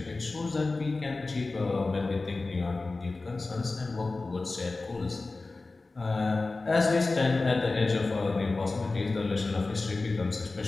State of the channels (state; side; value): quieter; right; 3.5 dB